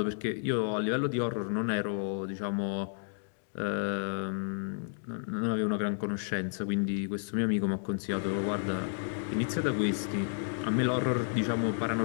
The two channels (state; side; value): silent; right; digital silence